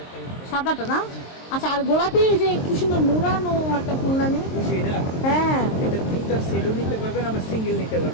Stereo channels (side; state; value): right; late; 23 ms